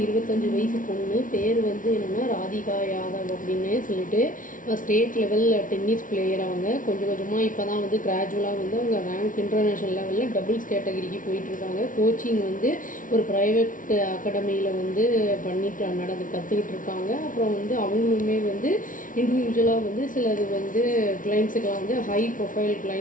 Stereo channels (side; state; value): right; late; 0.38 ms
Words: 25 வயசு பொண்ணு. பேர் வந்து என்னென்னா ராதிகா யாதவ் அப்படின்னு சொல்லிட்டு ஸ்டேட் லெவல் டென்னிஸ் பிளேயர். அவங்க கொஞ்சம் கொஞ்சமாக இப்போ தான் வந்து கிராஜுவலாக வந்து அவங்க ரேங்க் இன்டர்நேஷ்னல் லெவலில் டபுள்ஸ் கேட்டகரிக்கு போயிட்டுருக்காங்க. கோச்சிங் வந்து ஒரு ப்ரைவேட் அகாடமியில் வந்து கற்றுக்கிட்டு இருக்காங்க. அப்புறம் வந்து அவங்களுமே வந்து இண்டிவிஜுவலாக வந்து சிலது வந்து கிளைண்ட்ஸுக்கெலாம் வந்து ஹை ப்ரொஃபைல்